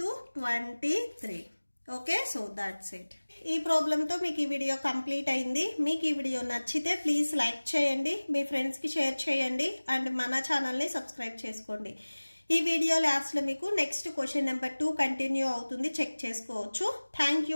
23. Okay, so that's it. ఈ ప్రాబ్లంతో మీకు ఈ వీడియో కంప్లీట్ అయింది. మీకు ఈ వీడియో నచ్చితే ప్లీజ్ లైక్ చేయండి, మీ ఫ్రెండ్స్కి షేర్ చేయండి అండ్ మన ఛానల్ని సబ్స్క్రైబ్ చేసుకోండి. ఈ వీడియో లాస్ట్లో మీకు నెక్స్ట్ క్వశ్చన్ నెంబర్ 2 కంటిన్యూ అవుతుంది, చెక్ చేసుకోవచ్చు. Thank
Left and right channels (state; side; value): inverted; both; correlation -1.00